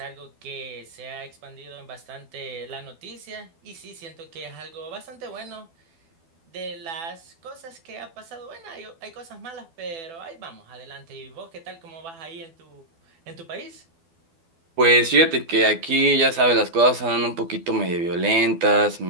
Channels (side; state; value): left; late; 12 ms